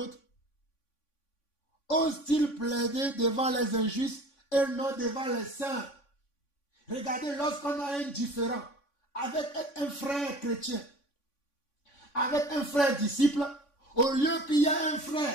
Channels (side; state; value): right; late; 3.5 ms